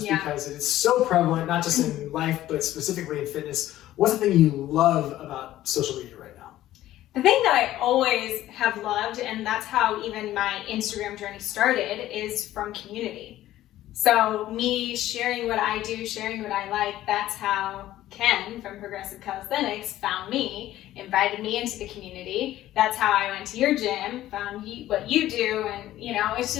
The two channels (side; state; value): right; quieter; 14.1 dB